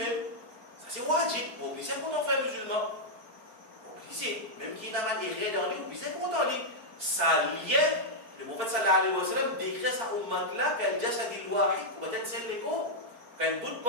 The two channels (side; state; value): left; late; 4.4 ms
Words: Ça c'est wajib. Obligé content frère musulman. Obligé, même qui n'a pas de rien dans lui, obligé content lui. Ça lien, le prophète sallallahu alayhi wa sallam décrit sa ummat là qu'elle jasad al-wahid, pour être celle l'écho. Quand un bout de